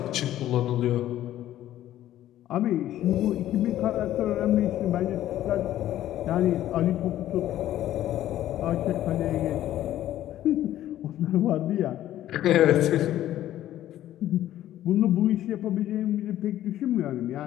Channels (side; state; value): right; quieter; 13.0 dB